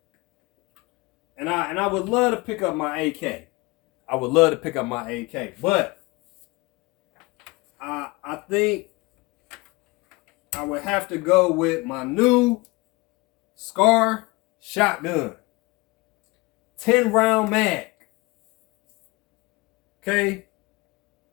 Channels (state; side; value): quieter; right; 24.3 dB